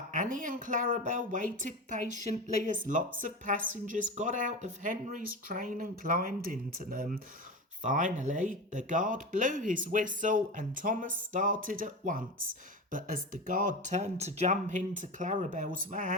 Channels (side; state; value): both; normal; correlation 0.25